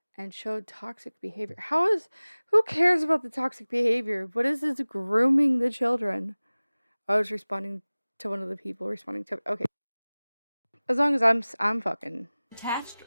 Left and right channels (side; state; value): both; inverted; correlation -0.99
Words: and showed toxic behavior. Who cares about the toxic behavior? What is this grooming the children? I was responding to one of the people responding to, okay. As long as I'm fucking Attached